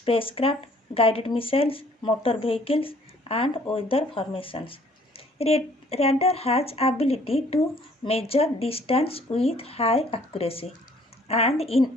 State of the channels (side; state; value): both; normal; correlation 0.59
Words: guided missiles, motor vehicles and weather formations. Radar has ability to measure distance with high accuracy and in